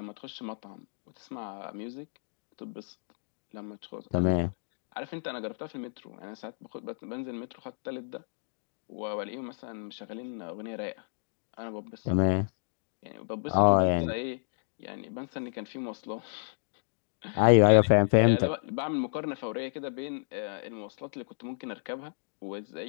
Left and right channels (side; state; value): right; silent; digital silence